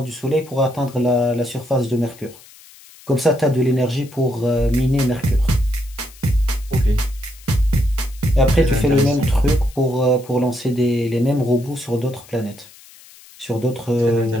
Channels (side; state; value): left; noise; hiss, 23 dB below the sound